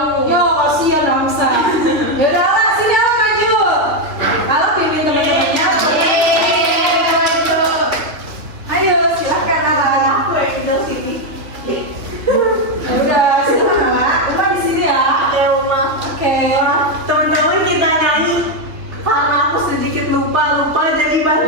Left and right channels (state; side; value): late; left; 3.1 ms